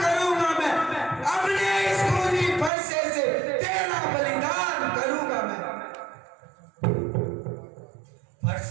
करूंगा मैं, अपने इस खूनी फरसे से तेरा बलिदान करूंगा मैं।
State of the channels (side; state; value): left; drops out; at 2.7 s